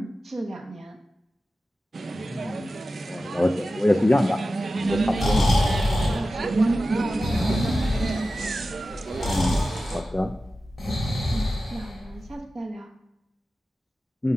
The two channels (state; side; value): normal; both; correlation 0.94